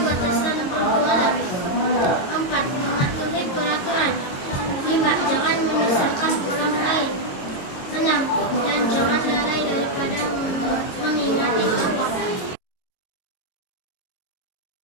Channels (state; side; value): late; right; 22 ms